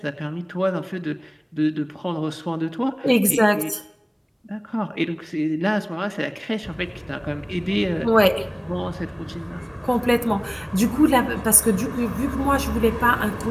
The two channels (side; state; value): both; identical; correlation 1.00